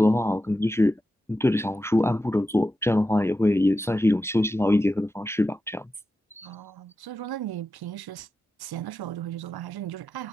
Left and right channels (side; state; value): both; normal; correlation 0.90